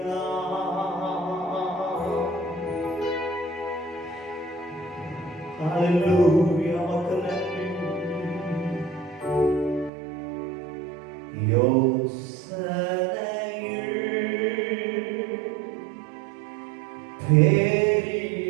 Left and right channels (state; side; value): drops out; left; at 9.9 s